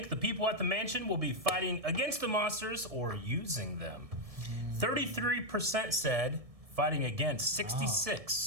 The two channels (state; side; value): late; left; 1.7 ms